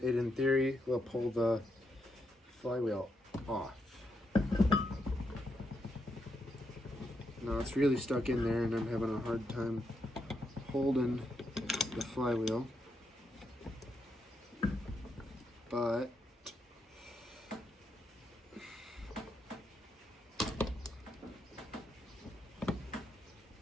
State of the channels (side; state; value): both; normal; correlation 0.80